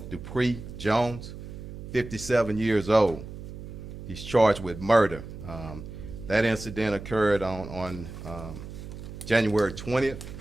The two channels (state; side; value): noise; right; hum, 11 dB below the sound